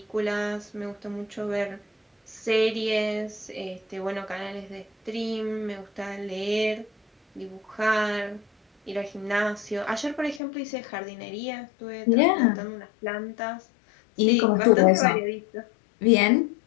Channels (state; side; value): drops out; right; at 10.4 s